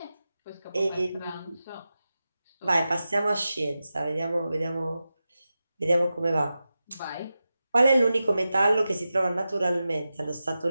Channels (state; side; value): inverted; both; correlation -0.92